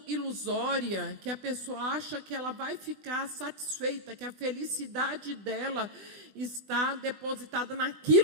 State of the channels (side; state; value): left; late; 20 ms